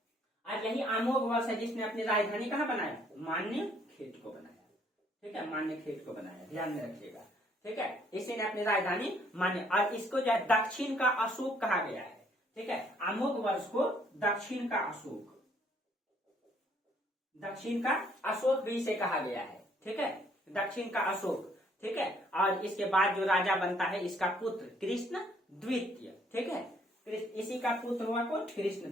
और यही अमोघ वर्ष है जिसने अपनी राजधानी कहाँ बनाया, मान्य खेत को बनाया। ठीक है, मान्य खेत को बनाया, ध्यान में रखिएगा। ठीक है, इसी ने अपनी राजधानी मान्य, और इसको जो है दक्षिण का अशोक कहा गया है। ठीक है, अमोघ वर्ष को दक्षिण का अशोक, दक्षिण का अशोक भी इसे कहा गया है। ठीक है, दक्षिण का अशोक। ठीक है, और इसके बाद जो राजा बनता है इसका पुत्र कृष्ण द्वितीय। ठीक है, इसी का पुत्र हुआ कौन, कृष्ण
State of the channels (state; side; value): normal; both; correlation 0.65